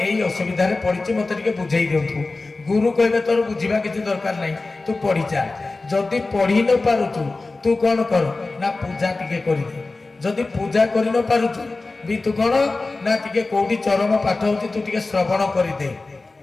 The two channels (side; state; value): right; quieter; 3.4 dB